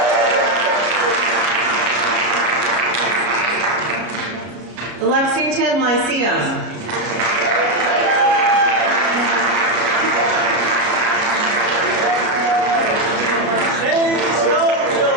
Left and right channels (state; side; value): late; left; 33 ms